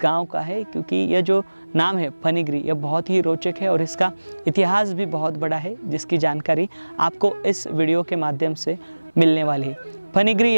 गांव का है, क्योंकि यह जो नाम है फनीगिरी यह बहुत ही रोचक है और इसका इतिहास भी बहुत बड़ा है, जिसकी जानकारी आपको इस वीडियो के माध्यम से मिलने वाली है। फनीगिरी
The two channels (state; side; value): inverted; both; correlation -1.00